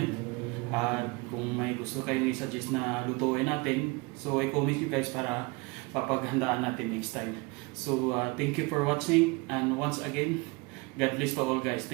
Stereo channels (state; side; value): quieter; left; 26.9 dB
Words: at kung may gusto kayong i-suggest na lutuin natin, so i-comment nyo guys para papaghandaan natin next time. So thank you for watching, and once again, God bless to all guys.